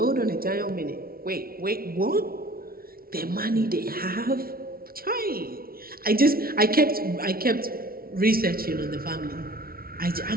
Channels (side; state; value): left; late; 0.43 ms